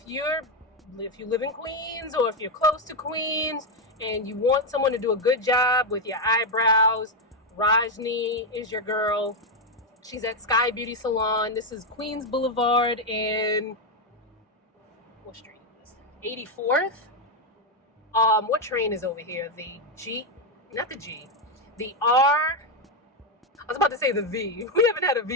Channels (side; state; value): both; normal; correlation 0.05